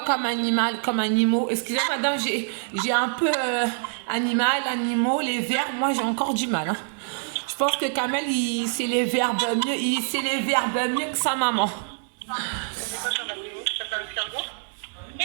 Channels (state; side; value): silent; left; digital silence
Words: comme animal, comme animaux? Excusez-moi, madame, j'ai un peu animaux, les vers, moi j'ai encore du mal. Hein. Je pense que Kamel, il sait les verbes mieux que sa maman. C'est quoi ça, Mathéo? Ça fait un escargot?